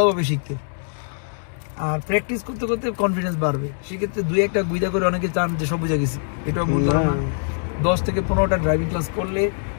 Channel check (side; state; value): right; silent; digital silence